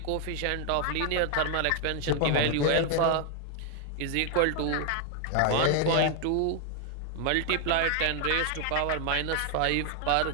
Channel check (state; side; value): different; both; correlation 0.00